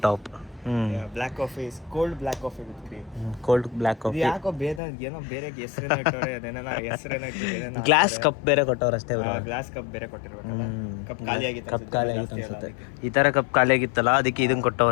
top. Black coffee is cold black coffee with cream. Cold black coffee. ಯಾಕೋ ಏನೋ ಬೇರೆ ಹೆಸರೇನೋ ಇಟ್ಟವ್ರೆ. ಅದೇನ ಹೆಸರೇನೋ ಗ್ಲಾಸ್ ಕಪ್ ಬೇರೆ ಕೊಟ್ಟವ್ರು ಅಷ್ಟೇ. ಗ್ಲಾಸ್ ಕಪ್ ಬೇರೆ ಕೊಟ್ಟಿರ್ಬೇಕಲ್ಲ. ಕಪ್ ಖಾಲಿ ಆಗಿತ್ತು ಅನ್ಸುತ್ತೆ. ಈ ಥರ ಕಪ್ ಖಾಲಿ ಆಗಿತ್ತಲ್ಲ, ಅದಕ್ಕೆ ಇದನ್ನ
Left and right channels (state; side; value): drops out; right; at 4.8 s